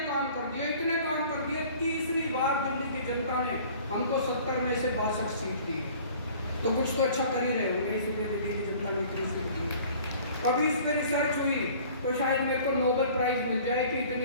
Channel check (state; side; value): inverted; both; correlation -0.49